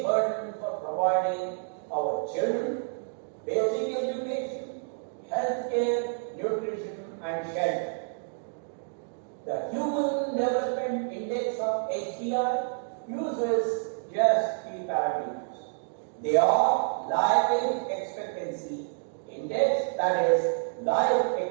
burden for providing our children basic education, healthcare, nutrition, and shelter. The Human Development Index of HDI uses just three parameters. They are life expectancy index, that is life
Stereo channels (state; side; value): silent; left; digital silence